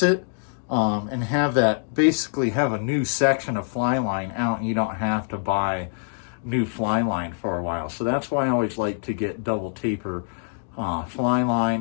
it, and basically have a new section of fly line out, and you don't have to buy new fly line for a while. So that's why I always like to get double taper fly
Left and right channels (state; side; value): silent; right; digital silence